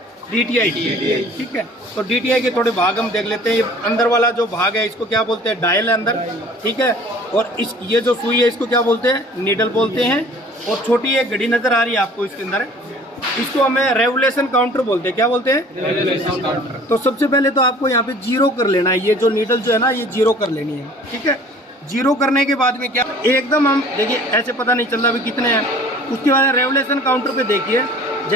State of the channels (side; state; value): both; normal; correlation 0.49